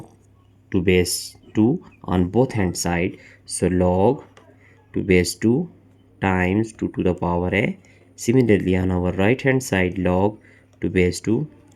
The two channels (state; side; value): identical; both; correlation 1.00